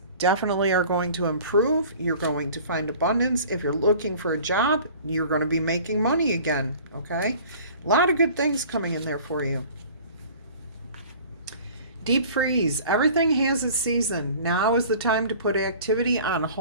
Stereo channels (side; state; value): both; inverted; correlation -0.46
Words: definitely are going to improve. You're going to find abundance. If you're looking for a job, you're going to be making money again. Okay? A lot of good things coming in there for you. Deep freeze. Everything has its season. Now is the time to put activity on